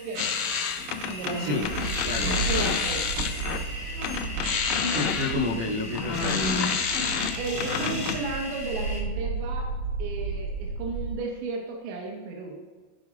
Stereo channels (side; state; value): left; late; 27 ms